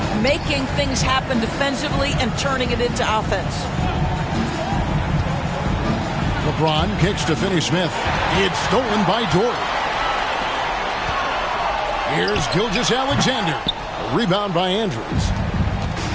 making things happen defensively and turning it into offense. LeBron kicks to Finney-Smith. It's stolen by Dort. Here's Gilgeous-Alexander. A rebound by Andrews.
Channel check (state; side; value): identical; both; correlation 1.00